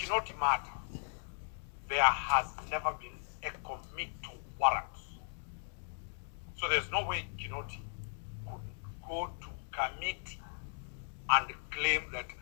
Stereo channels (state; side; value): silent; right; digital silence